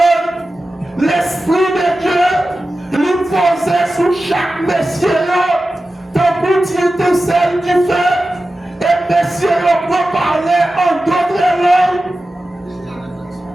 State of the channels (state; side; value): normal; both; correlation 0.94